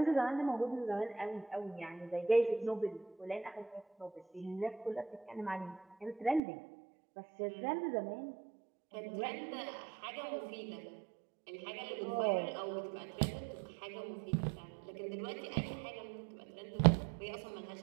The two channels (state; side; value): drops out; left; at 6.4 s